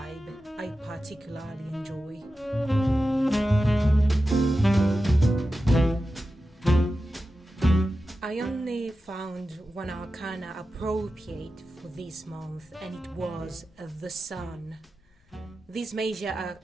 I particularly enjoy. I only found one arcana appropriate for this month, and it was the Sun. This major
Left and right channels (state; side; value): normal; both; correlation 0.93